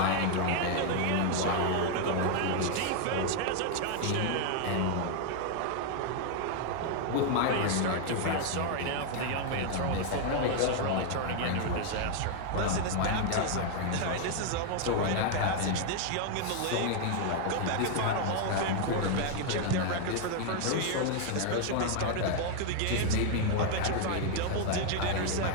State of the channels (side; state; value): both; different; correlation 0.00